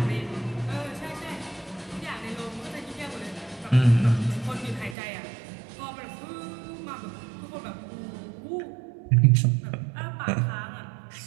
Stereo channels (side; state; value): left; drops out; at 5.0 s